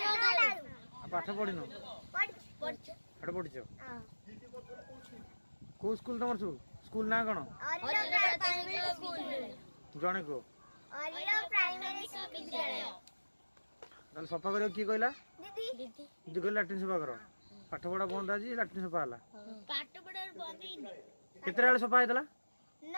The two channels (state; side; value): inverted; both; correlation -1.00